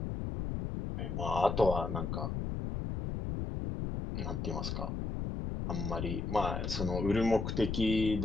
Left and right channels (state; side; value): noise; left; rumble, 3 dB below the sound